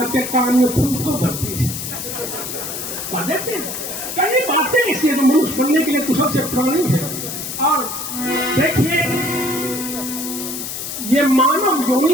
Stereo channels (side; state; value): left; noise; hiss, 6 dB below the sound